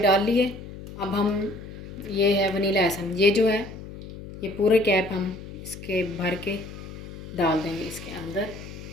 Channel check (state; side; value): noise; left; hum, 13 dB below the sound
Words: डाल लिए। अब हम ये है वनीला एसेंस, ये जो है ये पूरे कैप हम इसके भर के डाल देंगे इसके अंदर।